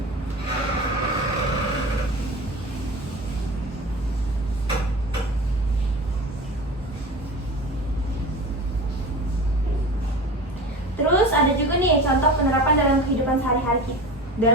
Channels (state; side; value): normal; both; correlation 0.33